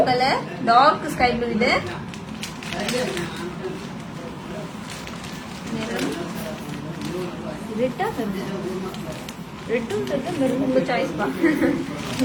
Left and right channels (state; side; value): identical; both; correlation 1.00